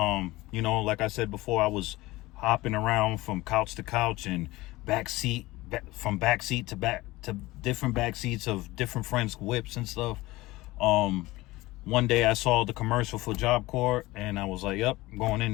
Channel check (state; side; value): quieter; right; 19.5 dB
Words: know, like I said before, I was hopping around from couch to couch and from back seat to different back seats of different friends' whips and stuff. One day I saw the commercial for Job Corps, and I was like, yep, I'm going